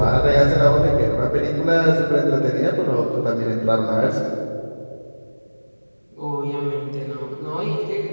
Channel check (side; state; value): both; inverted; correlation -1.00